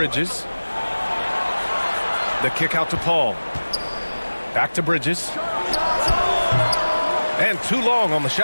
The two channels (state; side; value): inverted; both; correlation -1.00